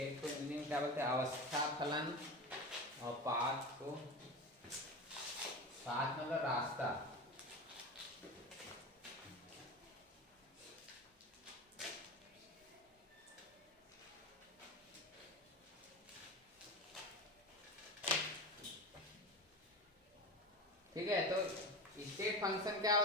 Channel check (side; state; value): both; normal; correlation 0.26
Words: को मीनिंग क्या बोलते हैं, अवस्था फलन, और पाथ को, पाथ मतलब रास्ता, ठीक है। तो स्टेट फंक्शन क्या